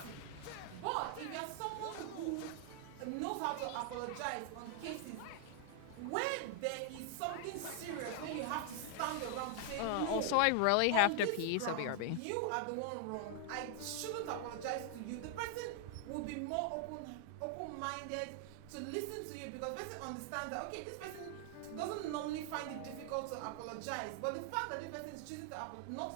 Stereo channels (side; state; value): both; different; correlation 0.00